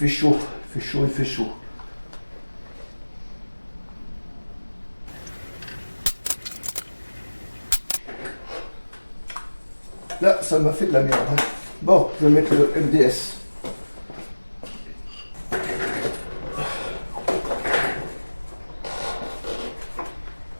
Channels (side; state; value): both; inverted; correlation -1.00